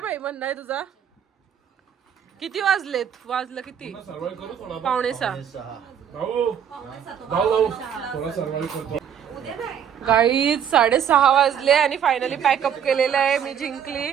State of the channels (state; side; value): quieter; left; 8.7 dB